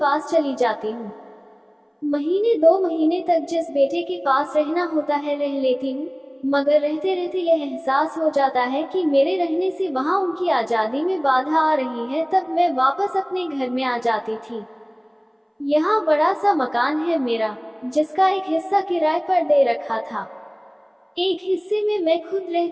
चली जाती हूँ। महीने 2 महीने तक जिस बेटे के पास रहना होता है रह लेती हूँ, मगर रहते रहते यह एहसास हो जाता है कि मेरे रहने से वहाँ उनकी आज़ादी में बाधा आ रही है। तब मैं वापस अपने घर में आ जाती थी। यहाँ बड़ा सा मकान है मेरा, जिसका एक हिस्सा किराए पर दे रखा था। एक हिस्से में मैं खुद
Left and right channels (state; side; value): identical; both; correlation 1.00